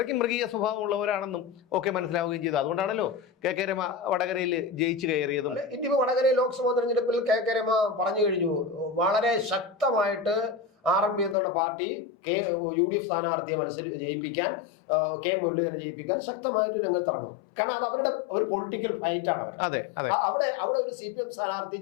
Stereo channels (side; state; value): right; drops out; at 11.4 s